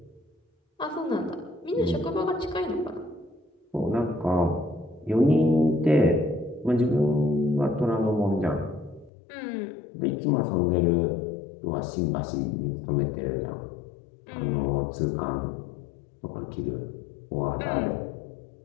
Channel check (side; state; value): right; drops out; at 9.1 s